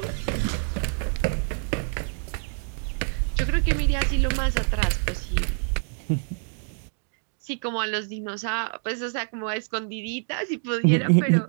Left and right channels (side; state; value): left; silent; 56 dB below the other